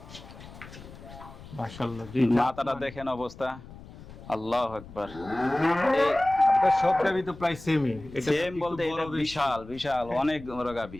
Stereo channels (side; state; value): left; noise; rumble, 17 dB below the sound